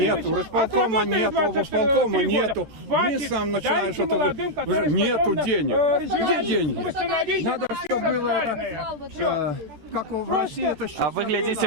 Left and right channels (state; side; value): late; left; 13 ms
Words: у располкома нет, облсполкома нету. Вы сам начинаешь это... Нету денег. Где деньги? Надо, чтобы было это... Как в России это сейчас... А вы